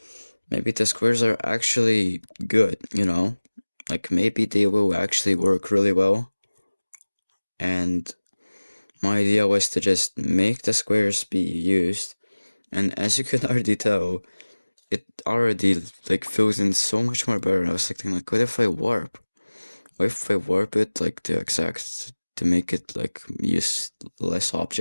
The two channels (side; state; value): both; inverted; correlation -1.00